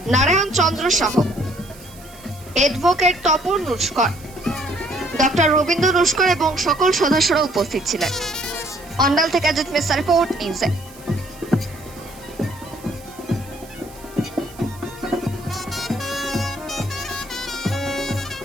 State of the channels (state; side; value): noise; right; hiss, 21 dB below the sound